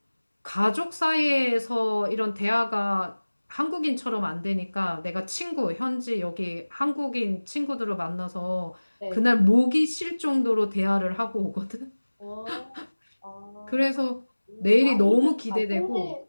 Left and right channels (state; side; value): inverted; both; correlation -1.00